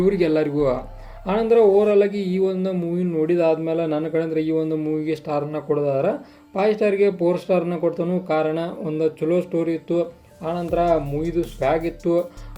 ಆನಂತರ ಓವರಾಲಾಗಿ ಈ ಒಂದು ಮೂವಿ ನೋಡಿದಾದ್ಮೇಲೆ ನನ್ನ ಕಡೆಯಿಂದ ಈ ಒಂದು ಮೂವಿಗೆ ಸ್ಟಾರನ್ನ ಕೊಡೋದಾದ್ರೆ 5 ಸ್ಟಾರ್ಗೆ 4 ಸ್ಟಾರನ್ನ ಕೊಡ್ತಾನು. ಕಾರಣ ಒಂದು ಚಲೋ ಸ್ಟೋರಿ ಇತ್ತು, ಆನಂತರ ಮೂವಿದು ಸ್ವ್ಯಾಗ್ ಇತ್ತು,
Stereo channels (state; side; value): identical; both; correlation 1.00